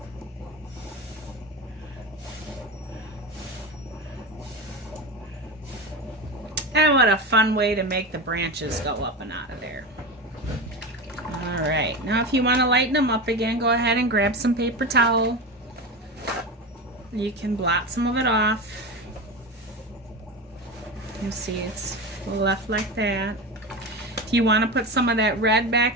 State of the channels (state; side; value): normal; both; correlation 0.23